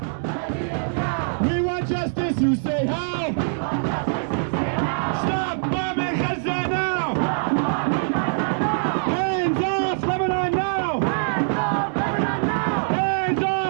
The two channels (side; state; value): left; silent; digital silence